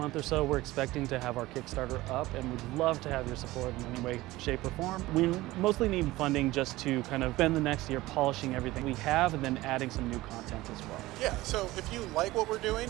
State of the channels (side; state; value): left; quieter; 18.4 dB